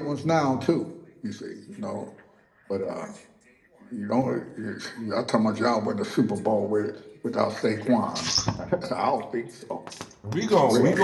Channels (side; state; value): both; identical; correlation 1.00